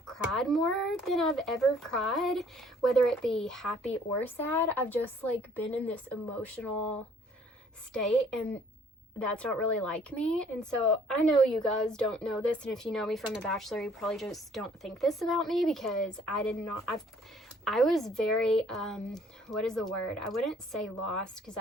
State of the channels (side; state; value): both; normal; correlation 0.59